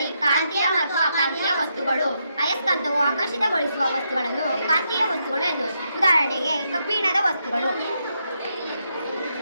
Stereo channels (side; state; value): both; inverted; correlation -0.80